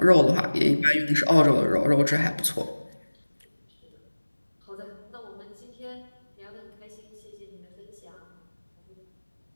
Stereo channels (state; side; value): inverted; both; correlation -1.00